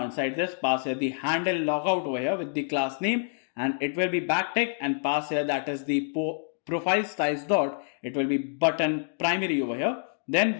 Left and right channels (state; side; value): silent; right; digital silence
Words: inside this, pass here the handle logout over here with the class name and it will be backtick and pass here that is the profile size dot, it will be button primary over here. Then